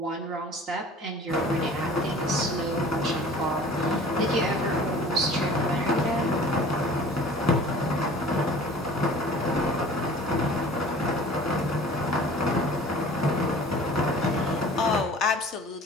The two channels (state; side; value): normal; both; correlation 0.46